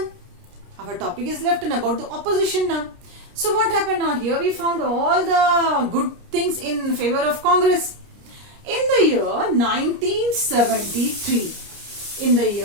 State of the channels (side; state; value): left; late; 29 ms